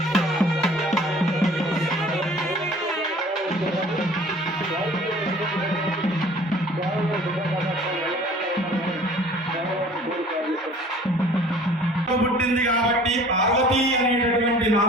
పుట్టింది కాబట్టి పార్వతి అనేటటువంటి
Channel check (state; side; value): normal; both; correlation 0.49